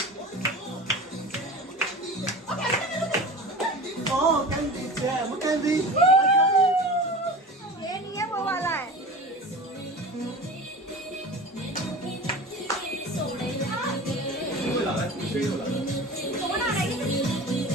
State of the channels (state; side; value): normal; both; correlation 0.34